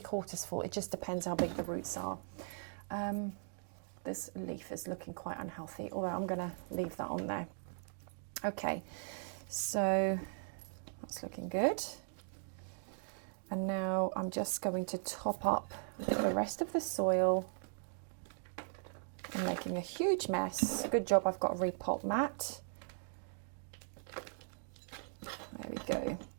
full. It just depends how big the roots are. This leaf is looking quite unhealthy, although I'm going to leave that on there. Okay, so that's looking good. And now I'm just going to top up the rest of the soil. I'm making a huge mess. Good job I've got a repot mat. There we go.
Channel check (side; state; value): left; silent; digital silence